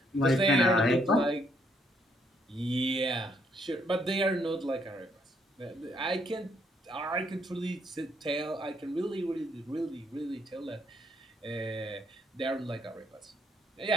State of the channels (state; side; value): normal; both; correlation 0.71